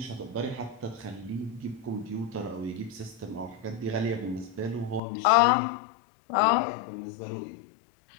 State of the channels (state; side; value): drops out; right; at 5.0 s